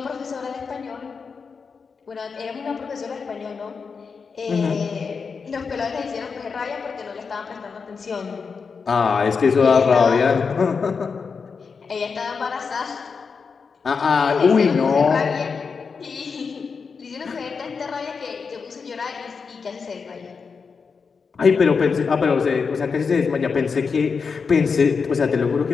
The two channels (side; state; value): right; quieter; 5.4 dB